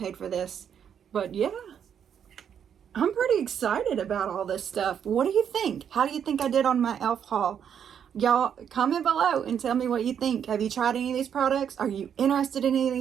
for this. But yeah, I'm pretty excited about all this stuff. What do you think? How do you think I did on my e.l.f. haul? Y'all, comment below and tell me what you think. Have you tried any of these products? Are you interested in any of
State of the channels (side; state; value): left; quieter; 8.4 dB